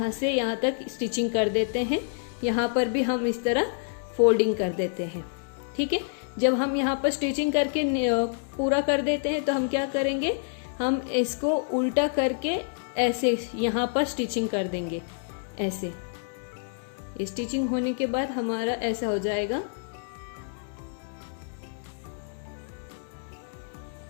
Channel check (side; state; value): right; silent; digital silence